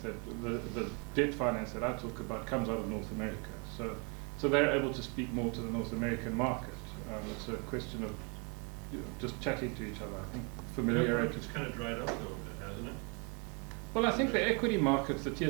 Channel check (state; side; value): quieter; left; 33.8 dB